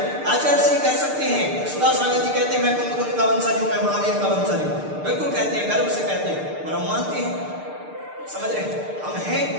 आचार्य श्री कह सकते हैं, सुधा सागर जी कहते हैं मैं कुंभ का वंशज हूं, मैं महावीर का वंशज हूं। बिल्कुल कहते हैं, गर्व से कहते हैं, और हम मानते हैं। समझ रहे हैं? हम हैं,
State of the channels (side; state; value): left; late; 6.6 ms